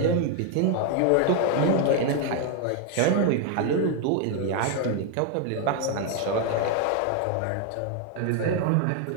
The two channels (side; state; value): both; different; correlation 0.01